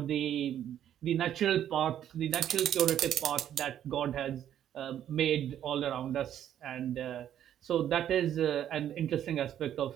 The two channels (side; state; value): left; quieter; 10.5 dB